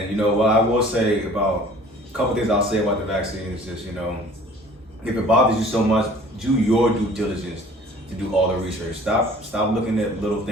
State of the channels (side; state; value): both; normal; correlation 0.50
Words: I will say about a couple things I'll say about the vaccine is just, if it bothers you so much, do your due diligence to do all the research. Stop looking at little